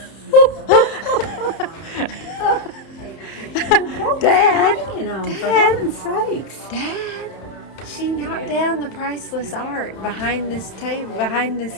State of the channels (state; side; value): late; right; 31 ms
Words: Dad, for heaven's sakes. Dad, she knocked down the priceless art behind this table, behind